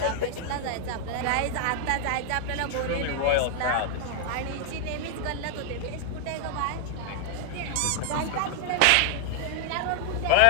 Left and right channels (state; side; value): different; both; correlation 0.00